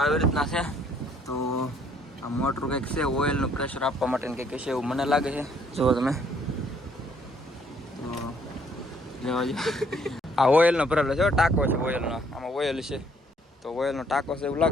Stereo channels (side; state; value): both; normal; correlation 0.65